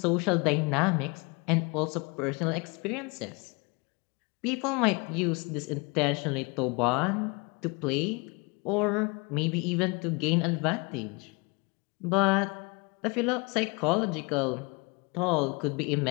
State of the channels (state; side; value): quieter; right; 29.0 dB